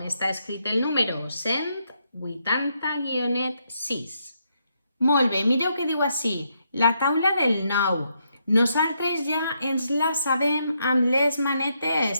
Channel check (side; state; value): both; inverted; correlation -0.78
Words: està escrit el número 180-6. Molt bé, mireu què diu així, la taula del 9. Nosaltres ja ens la sabem amb les